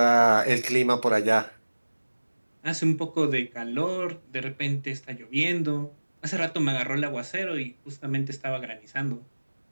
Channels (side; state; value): both; inverted; correlation -1.00